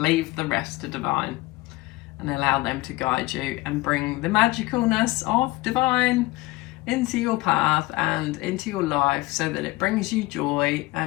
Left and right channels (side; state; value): right; quieter; 20.4 dB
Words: the rest to divine, and allow them to guide you and bring the magicalness of divine into your path and into your life, so that it brings you joy